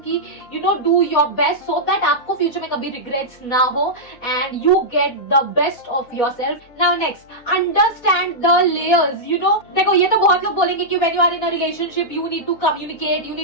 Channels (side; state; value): right; late; 4.2 ms